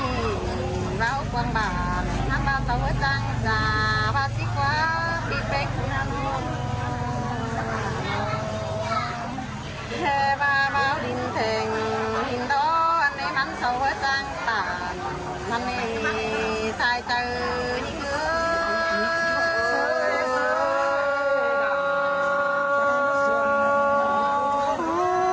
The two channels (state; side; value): identical; both; correlation 1.00